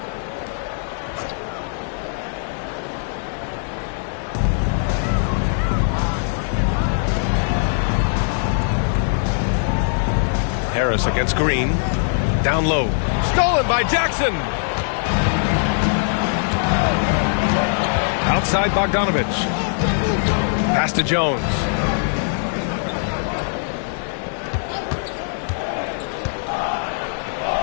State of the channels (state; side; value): silent; right; 65 dB below the other